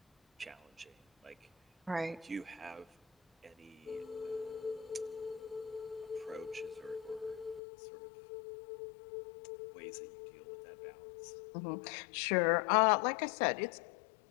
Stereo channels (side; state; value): right; drops out; at 7.6 s